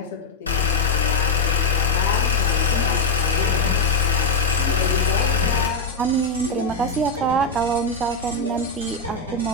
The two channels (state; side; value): quieter; right; 3.1 dB